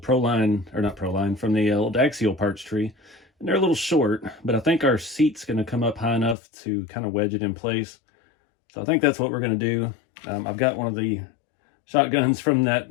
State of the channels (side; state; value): right; drops out; at 6.4 s